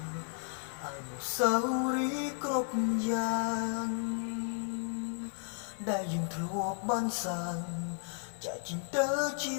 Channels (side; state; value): right; silent; 55 dB below the other